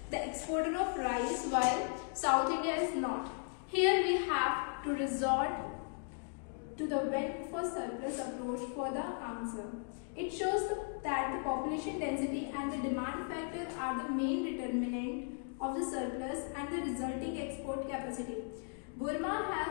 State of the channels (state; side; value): silent; right; 53 dB below the other